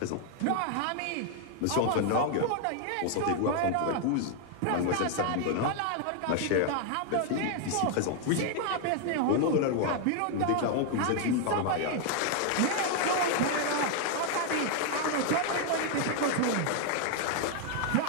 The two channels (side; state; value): both; different; correlation 0.00